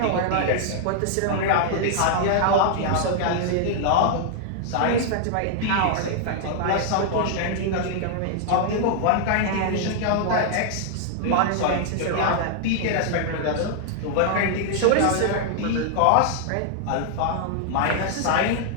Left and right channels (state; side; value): different; both; correlation -0.01